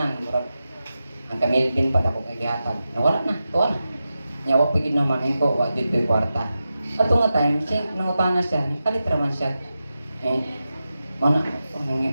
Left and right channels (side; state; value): both; inverted; correlation -0.91